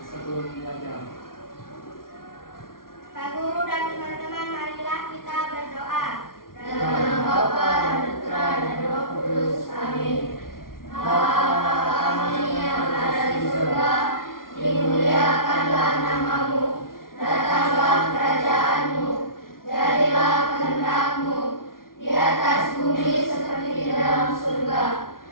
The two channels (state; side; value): late; right; 0.92 ms